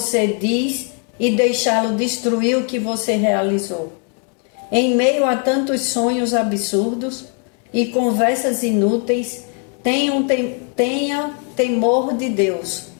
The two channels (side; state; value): right; quieter; 38.6 dB